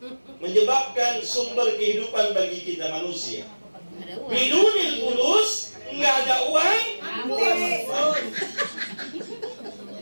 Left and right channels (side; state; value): both; inverted; correlation -1.00